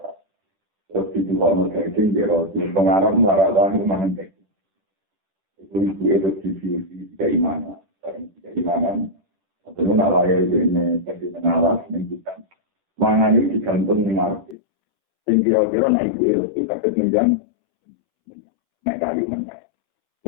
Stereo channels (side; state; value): right; drops out; at 14.6 s